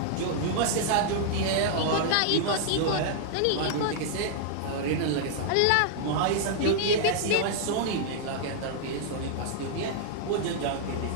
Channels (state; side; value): different; both; correlation -0.01